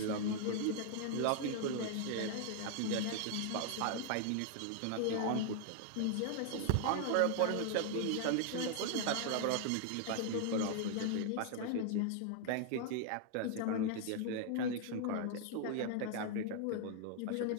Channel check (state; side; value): different; both; correlation 0.00